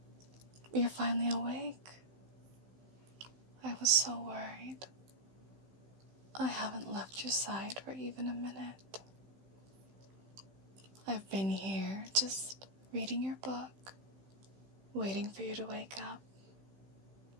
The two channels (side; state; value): left; late; 15 ms